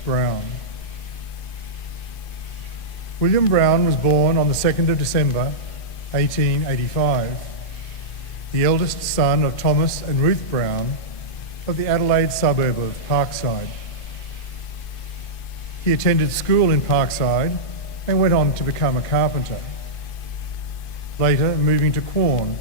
Brown. William Brown was born on the 2nd of December 1885, the eldest son of Thomas and Ruth Brown of the Adelaide suburb of Parkside. He attended school in Parkside and went on to become a carpenter, later moving to Quorn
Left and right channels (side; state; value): right; late; 2.5 ms